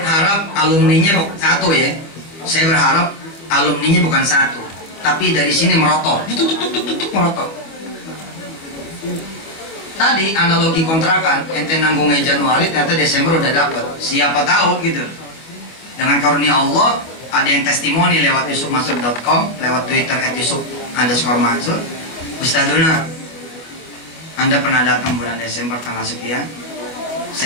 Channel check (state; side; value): late; right; 25 ms